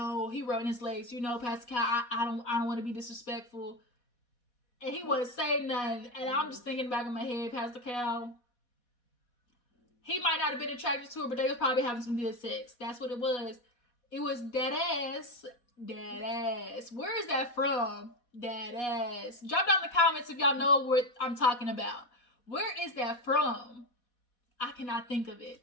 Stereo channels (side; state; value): right; late; 4.1 ms